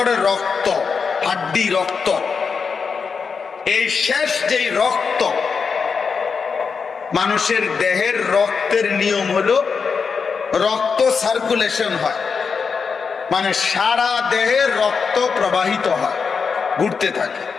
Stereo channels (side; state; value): right; quieter; 5.5 dB